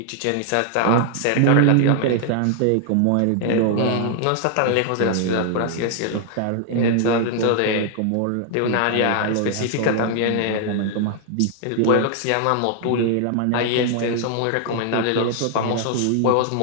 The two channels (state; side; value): different; both; correlation 0.00